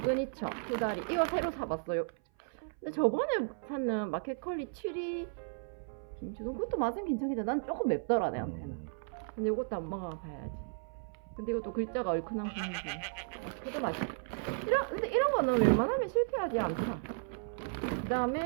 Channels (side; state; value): left; silent; 55 dB below the other